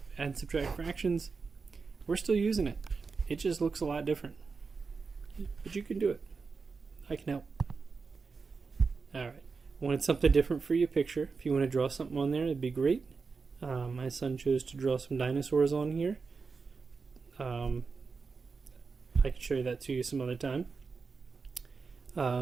add and subtract fractions. We're still using it. It just looks a lot different. But you can do it. I can help. Alright. Wanted something different for your picture. If you want to draw something on there, it'd be great. My son chose to draw some dinosaurs on here. I can show you that to you some other time.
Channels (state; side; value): quieter; left; 4.8 dB